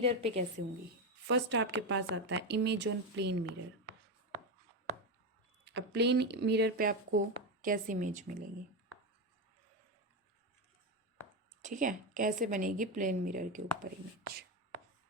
पे कैसे होंगी। फर्स्ट आपके पास आता है इमेज ऑन प्लेन मिरर। अब प्लेन मिरर पे आपको कैसी इमेज मिलेगी, ठीक है, कैसे बनेगी प्लेन मिरर के ऊपर इमेज।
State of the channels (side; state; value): both; normal; correlation 0.13